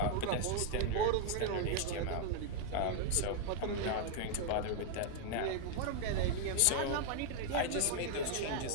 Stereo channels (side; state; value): both; different; correlation 0.00